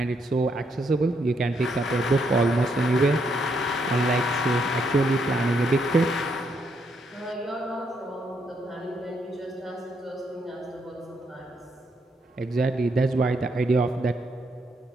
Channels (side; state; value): both; normal; correlation 0.76